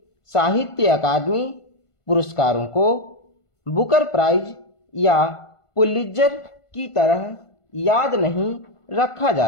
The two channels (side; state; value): right; late; 1.5 ms